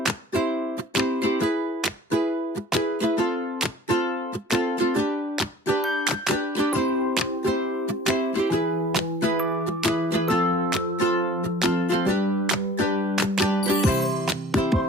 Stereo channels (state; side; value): normal; both; correlation 0.48